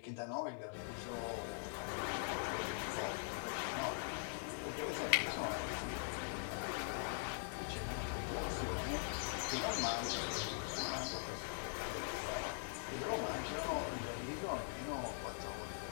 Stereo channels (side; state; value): right; silent; digital silence